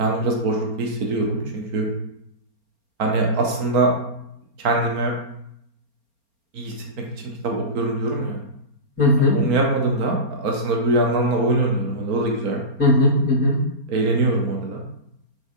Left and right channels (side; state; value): left; late; 4.3 ms